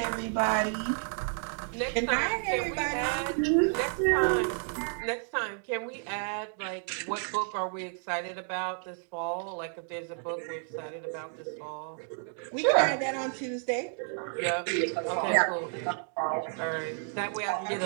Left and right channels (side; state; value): left; silent; 56 dB below the other